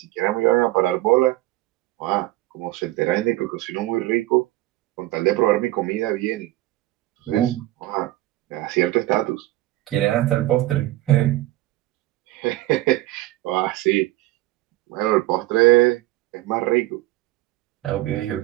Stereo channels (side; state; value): left; quieter; 17.3 dB